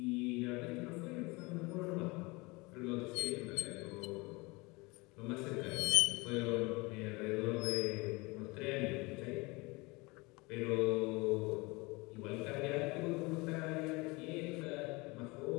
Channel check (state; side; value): quieter; right; 25.2 dB